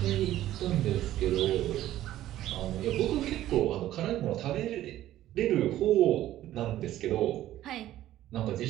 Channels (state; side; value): quieter; left; 13.6 dB